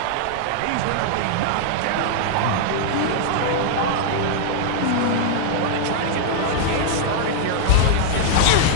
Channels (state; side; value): different; both; correlation -0.01